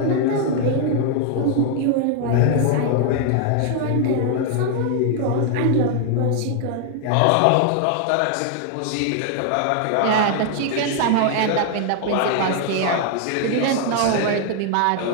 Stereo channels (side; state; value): both; different; correlation 0.00